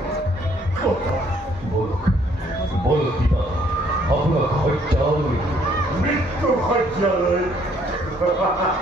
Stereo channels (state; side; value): normal; both; correlation 0.65